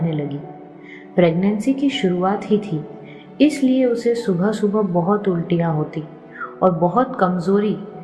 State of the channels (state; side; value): identical; both; correlation 1.00